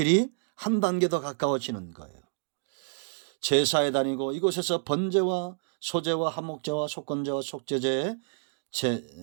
한 단계 더 가까워지는 거예요. 제사에 다니고 이곳에서 번제와 소제와 한목제와 속건제와 속죄제의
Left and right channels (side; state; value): left; silent; digital silence